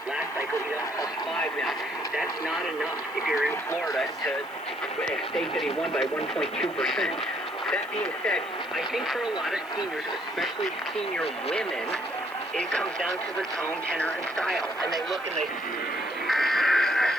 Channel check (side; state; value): right; noise; hiss, 25 dB below the sound